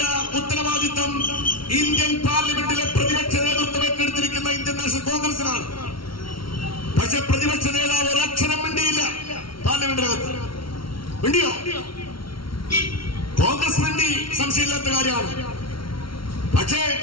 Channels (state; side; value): late; right; 0.74 ms